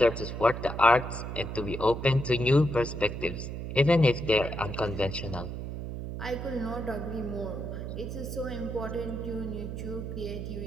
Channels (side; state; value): right; noise; hum, 6 dB below the sound